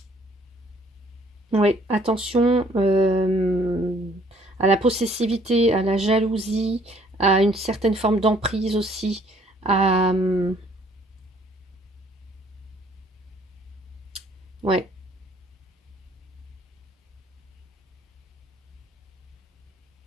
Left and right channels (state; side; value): normal; both; correlation 0.61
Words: oui, attention à la possessivité, à la jalousie, à une certaine forme d'emprise aussi. À, ouais.